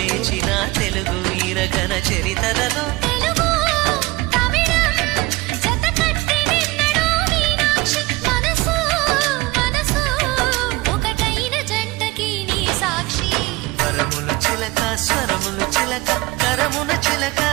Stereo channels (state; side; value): quieter; left; 21.2 dB